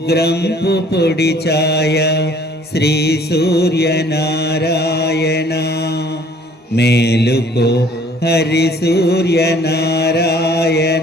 పొడి ఛాయ. శ్రీ సూర్యనారాయణ మేలుకో హరి సూర్యనారాయణ.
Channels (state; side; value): normal; both; correlation 0.56